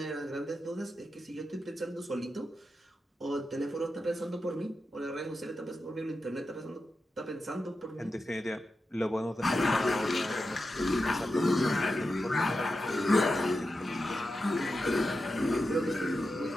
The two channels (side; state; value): both; normal; correlation 0.90